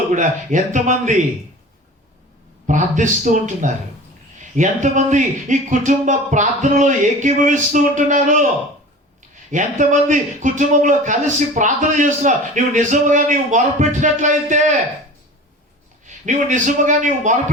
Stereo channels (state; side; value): normal; both; correlation 0.38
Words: కూడా ఎంతమంది ప్రార్థిస్తూ ఉంటున్నారు? ఎంతమంది ఈ కుటుంబ ప్రార్థనలో ఏకీభవిస్తూ ఉంటున్నారు? ఎంతమంది కుటుంబంలో కలిసి ప్రార్థన చేస్తున్నారు? నీవు నిజముగా మొరపెట్టినట్లయితే, నీవు